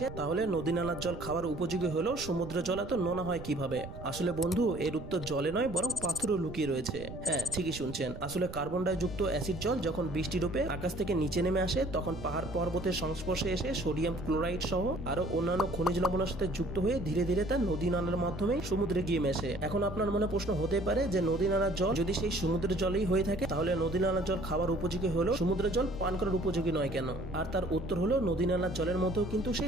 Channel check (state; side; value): noise; right; rumble, 12 dB below the sound